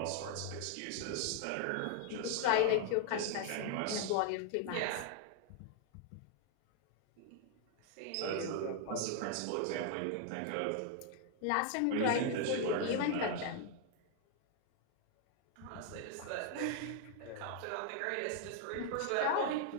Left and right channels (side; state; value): both; different; correlation 0.00